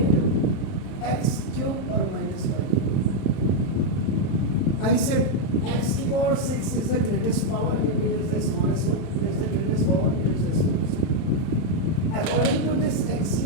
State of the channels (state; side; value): late; right; 31 ms